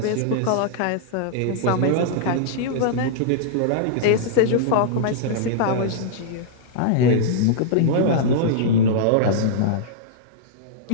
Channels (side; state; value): both; different; correlation -0.02